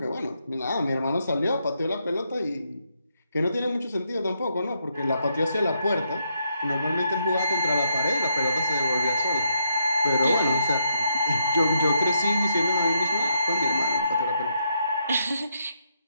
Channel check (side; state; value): both; inverted; correlation -0.77